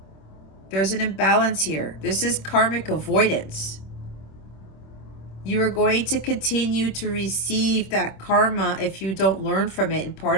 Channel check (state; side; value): late; right; 26 ms